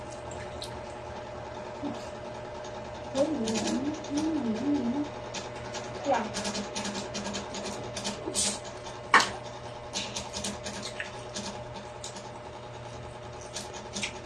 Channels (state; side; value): noise; left; hum, 23 dB below the sound